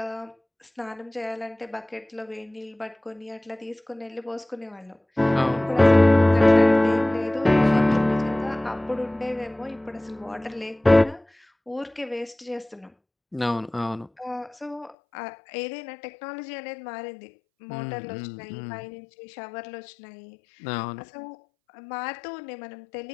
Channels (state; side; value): drops out; right; at 15.0 s